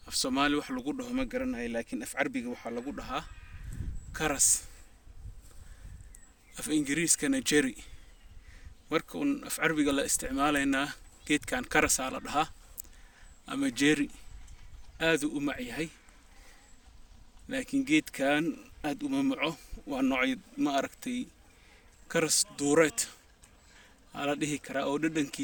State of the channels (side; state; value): both; identical; correlation 1.00